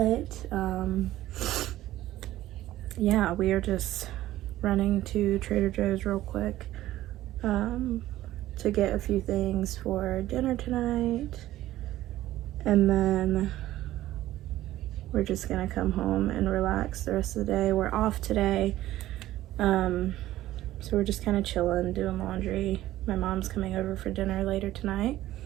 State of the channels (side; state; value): left; quieter; 14.8 dB